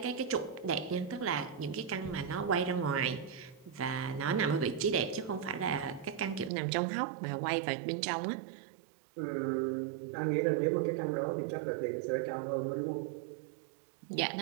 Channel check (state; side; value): drops out; left; at 6.5 s